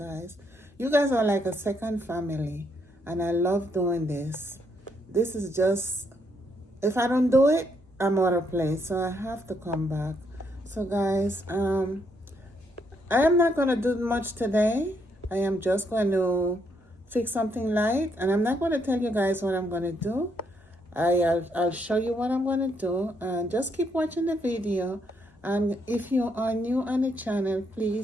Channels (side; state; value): both; normal; correlation 0.74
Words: You guys are like a second family and I love doing this. This is just, if I don't do it, I'm out of place, so I have to come back. So guys, I am not going to do much today. I am just going to fix something light, and I'm not going to tell you guys what I'm going to do. I'll show you what I'm going to do, and just keep watching the video. And if you are new on the channel,